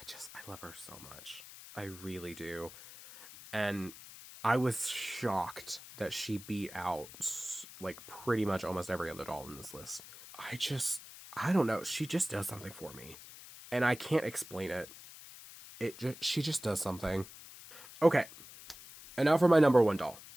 love her so much. I really do. And I was shocked that she beat out, like, pretty much almost every other doll in this list. I don't know. She just does something for me. And I can't explain it. She just does something. Okay. And now for my number 1 doll.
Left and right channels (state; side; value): noise; left; hiss, 16 dB below the sound